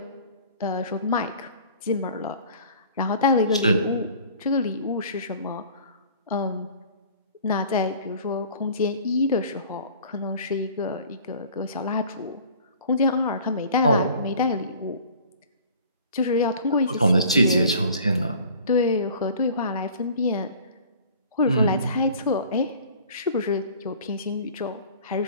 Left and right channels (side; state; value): both; inverted; correlation -0.47